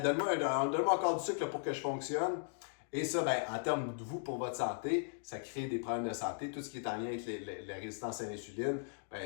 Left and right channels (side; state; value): right; silent; digital silence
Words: donne-moi encore du sucre là, pour que je fonctionne. Et ça, ben, en termes de vous, pour votre santé, ça crée des problèmes de santé. Tout ce qui est en lien avec la résistance à l'insuline,